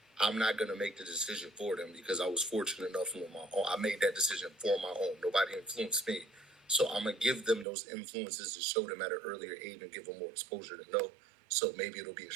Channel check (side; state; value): left; drops out; at 7.7 s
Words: I'm not gonna make the decision for them because I was fortunate enough on my own. I made that decision for my own. Nobody influenced me, so I'm gonna give them those influences to show them at an earlier age and give them more exposure to know. So maybe it'll be a